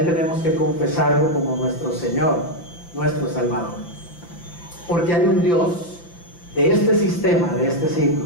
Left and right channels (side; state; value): right; late; 5.9 ms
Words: tenemos que confesarlo como nuestro Señor, nuestro Salvador. Porque hay un Dios de este sistema, de este siglo,